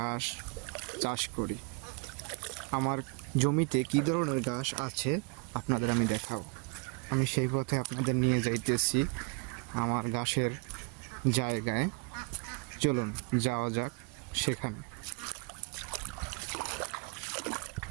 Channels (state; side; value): quieter; left; 31.4 dB